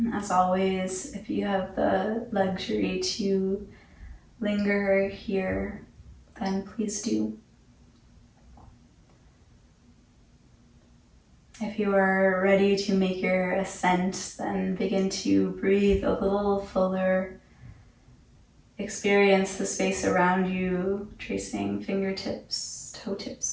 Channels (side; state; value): both; identical; correlation 1.00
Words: As always, if you have the luxury to linger here, then please do. If you are ready to make your ascent, then begin to breathe a little fuller. Experience the space around you, tracing fingertips, toe